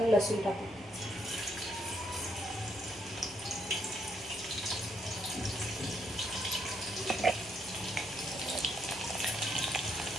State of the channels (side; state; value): both; normal; correlation 0.74